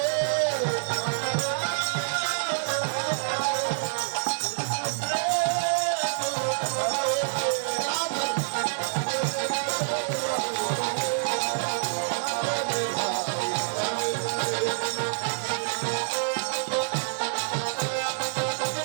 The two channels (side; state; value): left; silent; 60 dB below the other